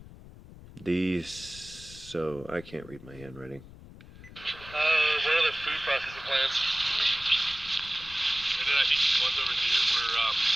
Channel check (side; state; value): left; noise; rumble, 18 dB below the sound